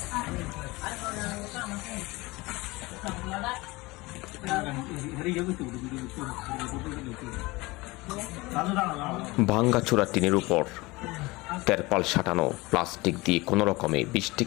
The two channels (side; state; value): right; quieter; 22.3 dB